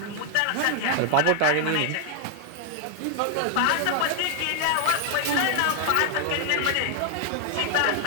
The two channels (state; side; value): different; both; correlation 0.00